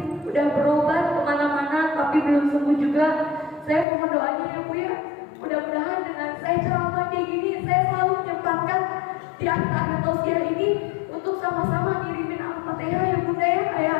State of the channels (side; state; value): right; drops out; at 3.9 s